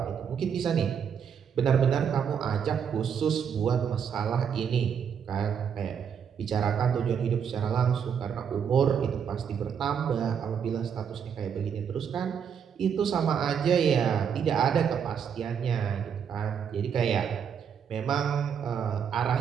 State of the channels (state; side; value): quieter; left; 7.5 dB